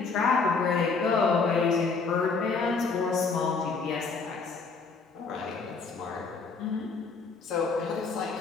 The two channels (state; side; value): quieter; right; 4.6 dB